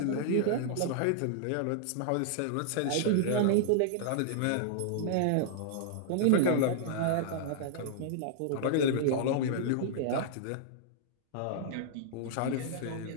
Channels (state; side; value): different; both; correlation -0.01